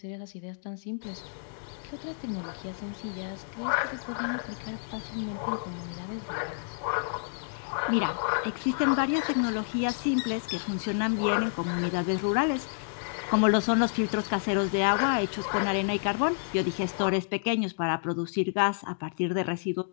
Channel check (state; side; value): silent; right; digital silence